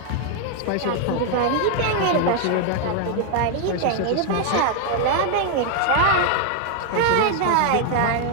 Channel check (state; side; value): different; both; correlation 0.00